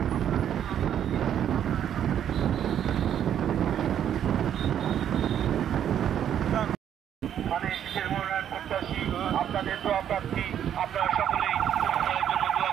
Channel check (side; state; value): left; quieter; 9.8 dB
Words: আপনাদের দোয়া প্রার্থী আপনারা সকলেই উভয়ের জন্য দোয়া